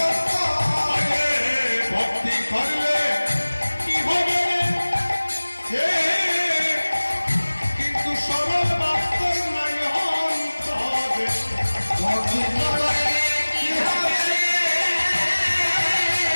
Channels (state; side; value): inverted; both; correlation -1.00